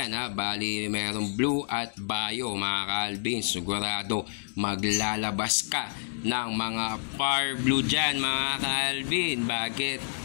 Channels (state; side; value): silent; right; digital silence